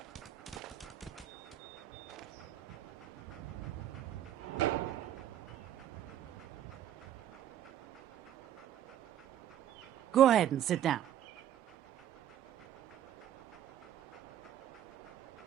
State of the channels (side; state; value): left; quieter; 11.1 dB